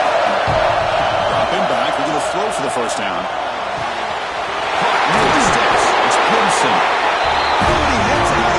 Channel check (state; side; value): identical; both; correlation 1.00